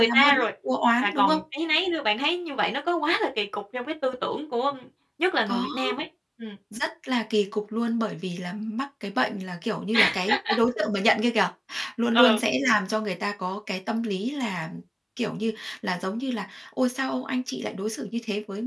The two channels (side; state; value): both; identical; correlation 1.00